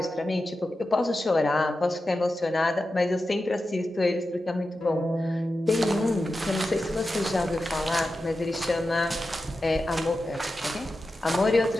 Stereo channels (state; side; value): normal; both; correlation 0.92